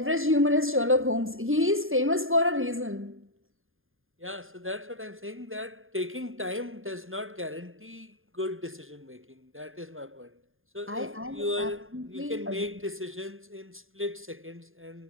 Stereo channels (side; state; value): left; late; 0.59 ms